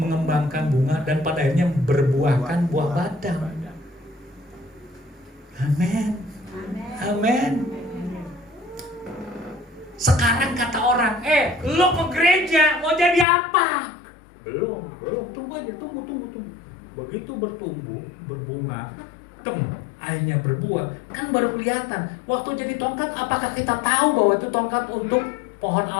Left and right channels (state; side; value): drops out; right; at 13.2 s